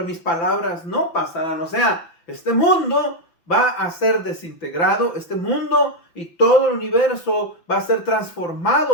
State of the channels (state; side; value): late; right; 5.9 ms